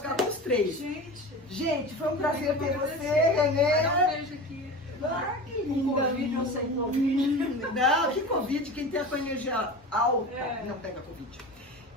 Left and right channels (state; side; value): normal; both; correlation 0.31